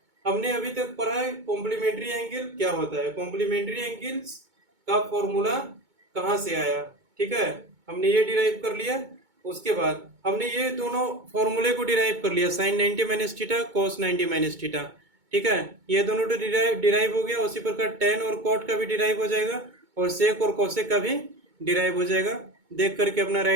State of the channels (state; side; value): late; left; 2.2 ms